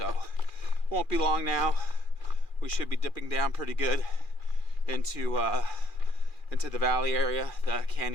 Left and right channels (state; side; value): late; right; 2.4 ms